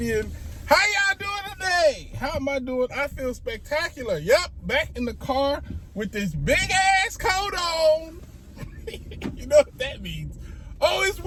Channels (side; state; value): both; identical; correlation 1.00